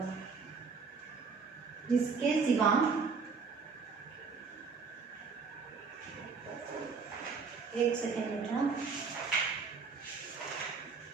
जिसके सिवा, एक सेकेंड बेटा,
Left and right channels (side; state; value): left; quieter; 5.0 dB